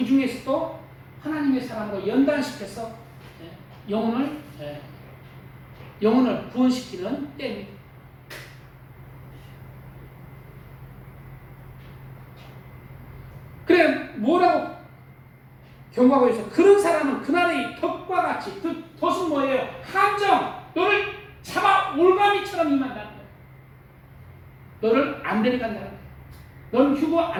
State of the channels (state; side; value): identical; both; correlation 1.00